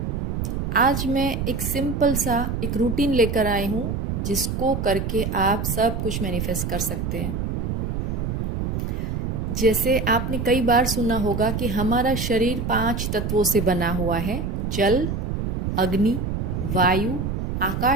आज मैं एक सिंपल सा एक रूटीन लेकर आई हूँ जिसको करके आप सब कुछ मैनिफेस्ट कर सकते हैं। जैसे आपने कई बार सुना होगा कि हमारा शरीर 5 तत्वों से बना हुआ है: जल, अग्नि, वायु,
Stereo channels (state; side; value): noise; right; rumble, 2 dB below the sound